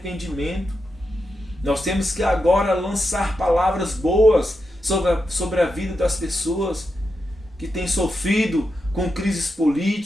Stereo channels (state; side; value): normal; both; correlation 0.87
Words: Nós temos que agora lançar palavras boas sobre a vida das pessoas que têm sofrido com crises